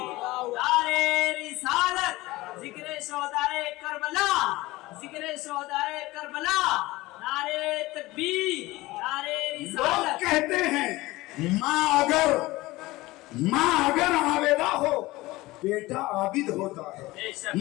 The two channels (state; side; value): quieter; right; 19.6 dB